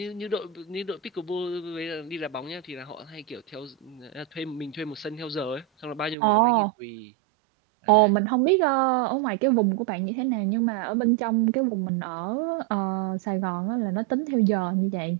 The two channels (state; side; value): drops out; left; at 6.2 s